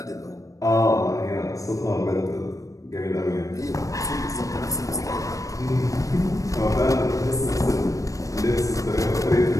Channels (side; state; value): right; late; 0.16 ms